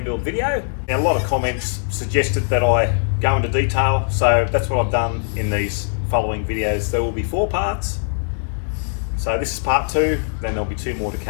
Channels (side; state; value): right; silent; digital silence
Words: build video. Now, a lot of comments suggested that I go into detail, so that's what I've done in these following videos. There will be 4 parts. So this is part 2, then there'll be 2 more to